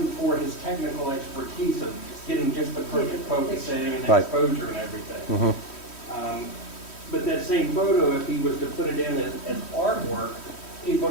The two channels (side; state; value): right; late; 3.1 ms